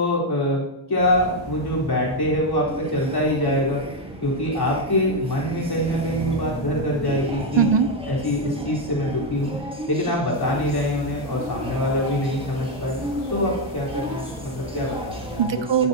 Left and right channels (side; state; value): both; normal; correlation 0.03